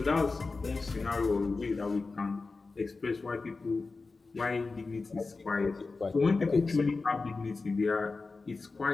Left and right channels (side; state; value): right; quieter; 3.9 dB